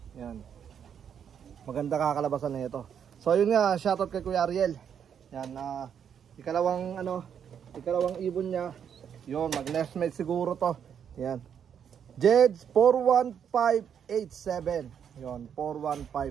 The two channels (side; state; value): left; quieter; 8.2 dB